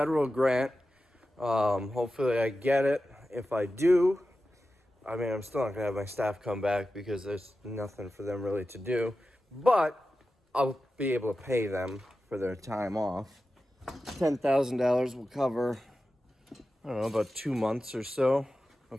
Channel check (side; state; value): both; normal; correlation 0.93